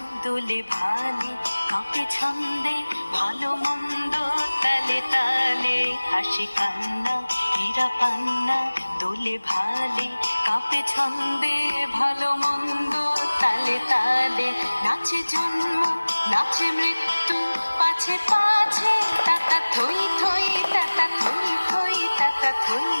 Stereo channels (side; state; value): both; inverted; correlation -1.00